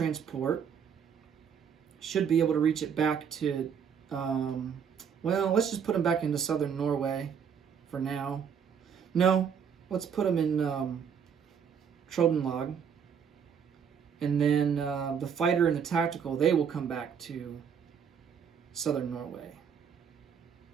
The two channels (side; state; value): left; quieter; 7.4 dB